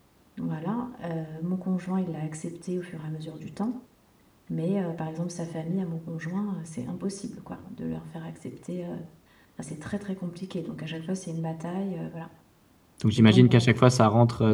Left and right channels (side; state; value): both; identical; correlation 1.00